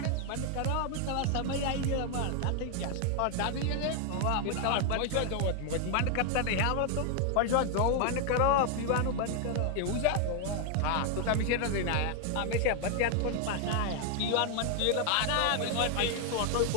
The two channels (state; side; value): different; both; correlation 0.00